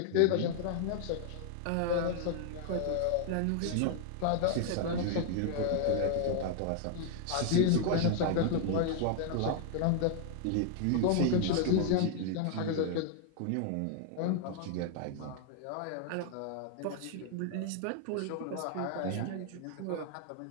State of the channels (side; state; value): both; different; correlation 0.00